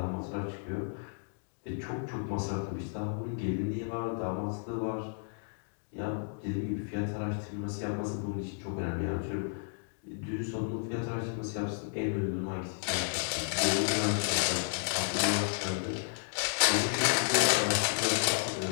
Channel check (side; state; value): right; silent; digital silence